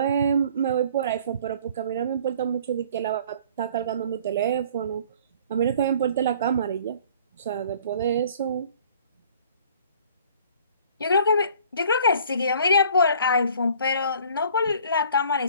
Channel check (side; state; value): both; inverted; correlation -0.53